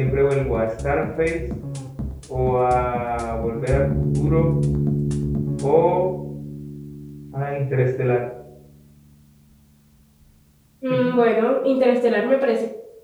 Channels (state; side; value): identical; both; correlation 1.00